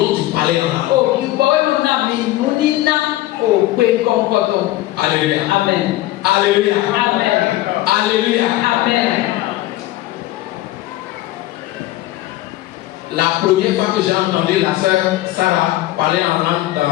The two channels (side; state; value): right; quieter; 16.1 dB